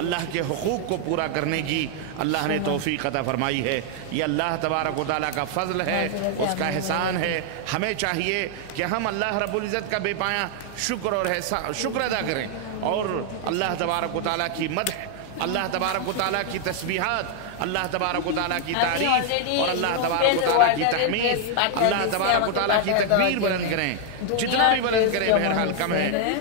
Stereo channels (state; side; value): different; both; correlation 0.00